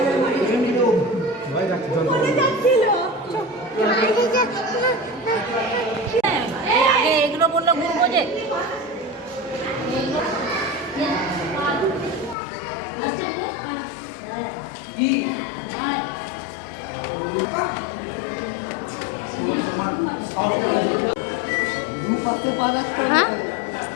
এগুলো বললো ঘুরবো যে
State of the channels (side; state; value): right; drops out; at 12.4 s